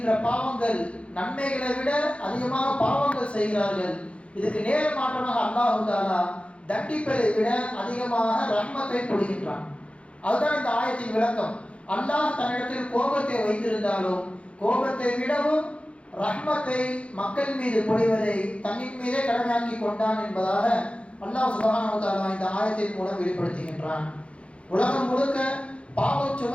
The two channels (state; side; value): late; right; 0.061 ms